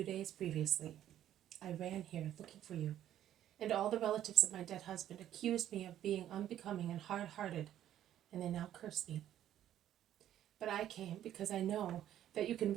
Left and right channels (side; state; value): left; quieter; 11.6 dB